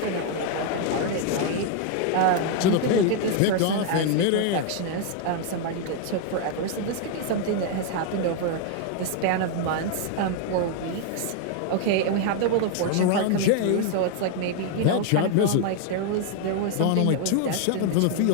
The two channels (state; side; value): different; both; correlation 0.00